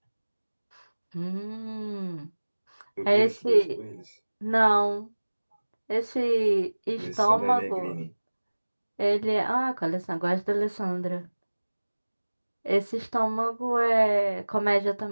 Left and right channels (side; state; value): both; inverted; correlation -1.00